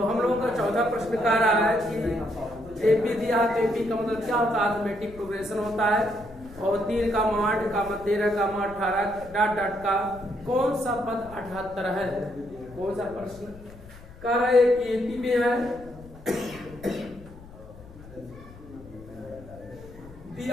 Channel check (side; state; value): left; noise; rumble, 19 dB below the sound